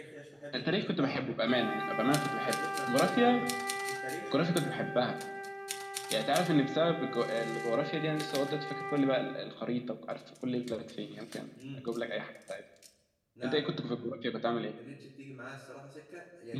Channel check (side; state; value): both; identical; correlation 1.00